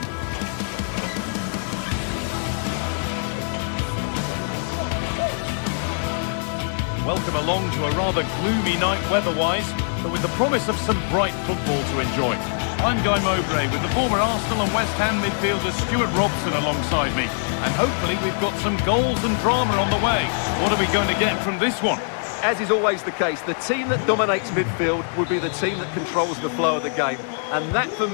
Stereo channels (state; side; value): silent; right; digital silence